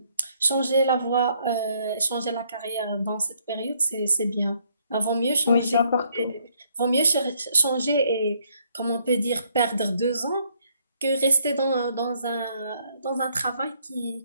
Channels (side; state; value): both; inverted; correlation -0.69